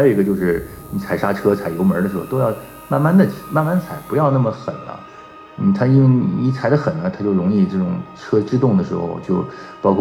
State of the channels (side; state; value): both; identical; correlation 1.00